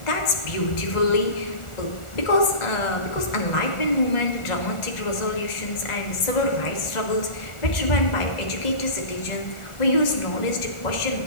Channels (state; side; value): late; right; 1.4 ms